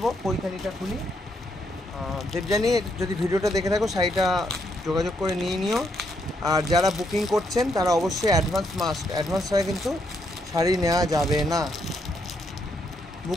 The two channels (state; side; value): normal; both; correlation 0.76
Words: পৈথানিটা খুলি। দেবযানী, যদি ভিডিওটা দেখে থাকো, শাড়িটা যোগাযোগ করে নিয়ে নিও। আর যারা বুকিং করছেন তারা অবশ্যই অ্যাডভান্স ছাড়া কিন্তু শাড়ি নেওয়া যাবে না,